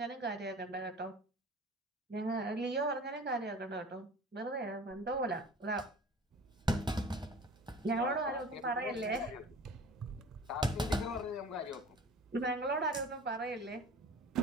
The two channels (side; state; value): both; normal; correlation 0.43